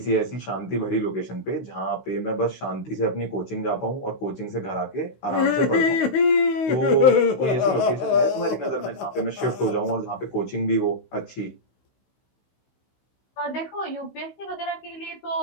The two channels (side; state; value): right; late; 16 ms